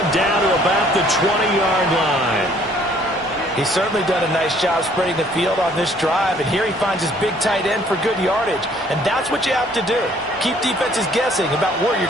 down to about the 20-yard line. He's certainly done a nice job spreading the field on this drive, and here he finds his big tight end for good yardage. And that's what you have to do. Keep defenses guessing about where you're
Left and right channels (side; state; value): both; normal; correlation 0.60